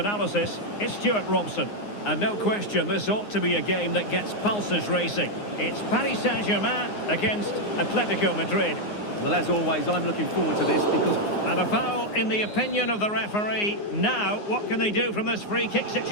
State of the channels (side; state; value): right; late; 9.6 ms